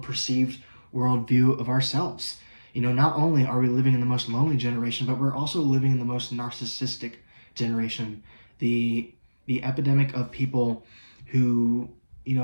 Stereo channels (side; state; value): both; inverted; correlation -1.00